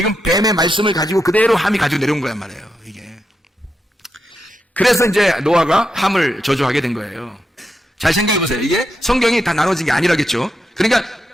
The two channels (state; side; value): normal; both; correlation 0.85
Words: 뱀의 말씀을 가지고 그대로 함이 가지고 내려온 거란 말이에요, 이게. 그래서 이제 노아가 함을 저주하게 된 거예요. 잘 생각해 보세요. 이게 성경이 다 나눠진 게 아니라겠죠. 그러니까